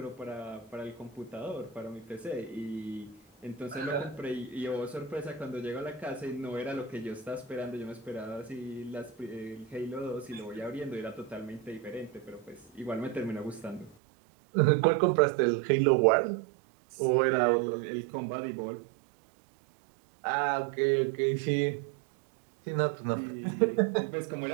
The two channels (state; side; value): drops out; left; at 14.0 s